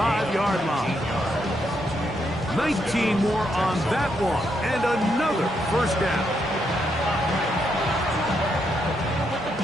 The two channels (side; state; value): both; normal; correlation 0.78